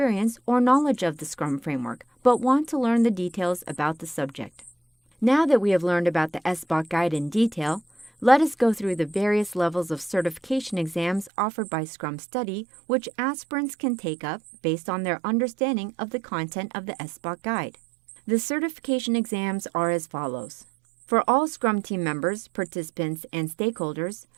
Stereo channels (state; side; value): drops out; left; at 11.3 s